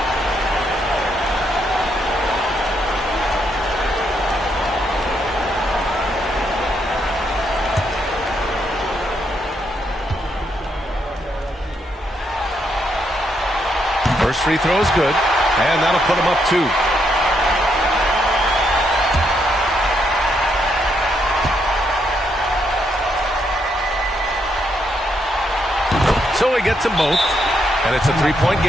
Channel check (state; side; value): normal; both; correlation 0.77